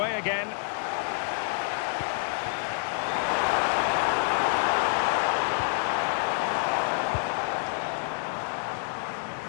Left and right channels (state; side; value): silent; right; 59 dB below the other